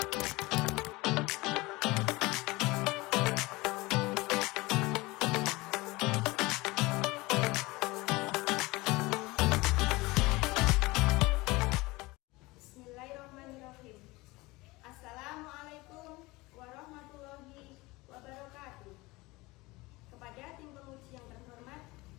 Assalamualaikum warahmatullahi wabarakatuh. Kepada tim penguji yang terhormat,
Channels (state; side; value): quieter; right; 22.0 dB